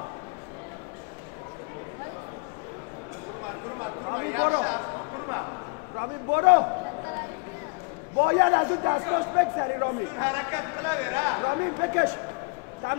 رامین برو باید از اون دستاش بگذری رامین بکش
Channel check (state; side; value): quieter; right; 30.6 dB